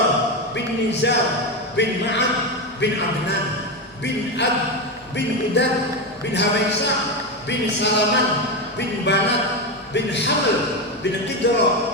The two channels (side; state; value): right; noise; hum, 29 dB below the sound